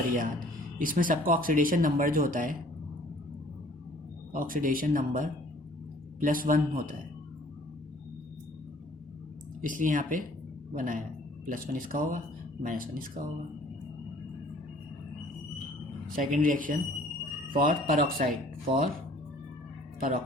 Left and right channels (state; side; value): normal; both; correlation 0.54